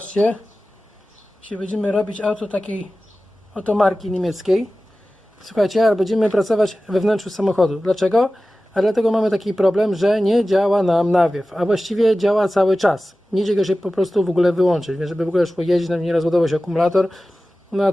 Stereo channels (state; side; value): normal; both; correlation 0.96